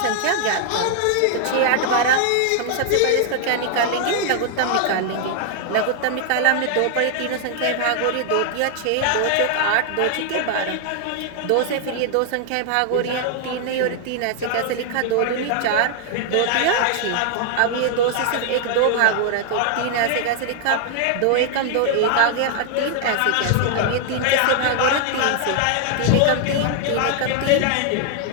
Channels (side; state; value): both; different; correlation 0.00